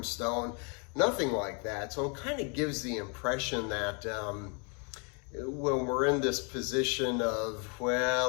nothing like that. So it kind of gives the impression that when we're in this position of,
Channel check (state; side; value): quieter; right; 36.1 dB